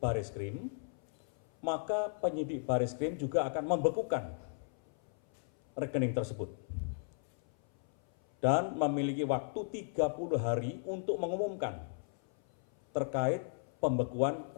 maka penyidik Bareskrim juga akan membekukan rekening tersebut dan memiliki waktu 30 hari untuk mengumumkan terkait pembekuan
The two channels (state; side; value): silent; right; 54 dB below the other